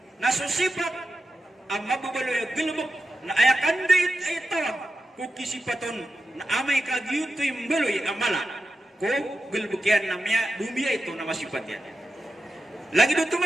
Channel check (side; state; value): both; normal; correlation 0.89